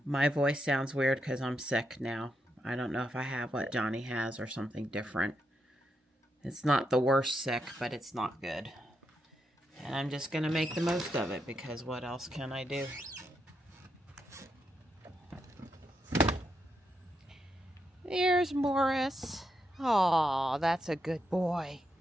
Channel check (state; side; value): normal; both; correlation 0.82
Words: voice sounds weird because I'm sick now. I don't know if I have what Johnny has or something different. It's not the worst sick, but it's not good. And I'm just going to make the most of it because what else can I do? There's Morris. Aw, that's a good boy.